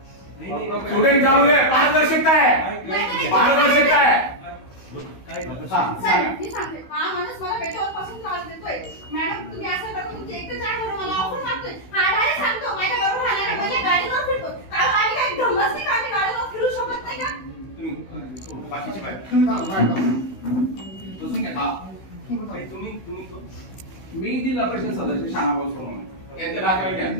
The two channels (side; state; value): right; late; 16 ms